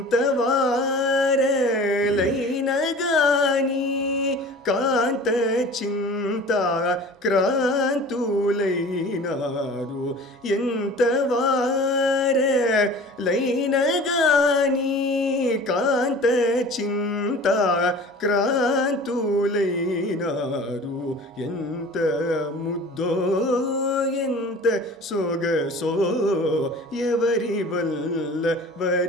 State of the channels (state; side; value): normal; both; correlation 0.42